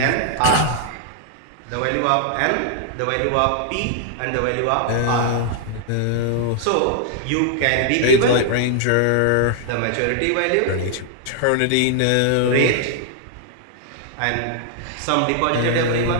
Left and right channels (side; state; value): both; different; correlation 0.00